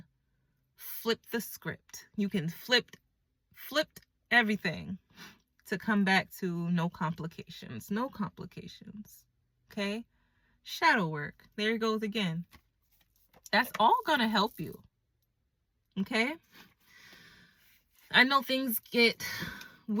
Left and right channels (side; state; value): both; identical; correlation 1.00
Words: flip the script. You can flip everything to come back to no complications. No complications. Okay? Shadow work. There it goes again. That's all gonna help you. Okay? I know things get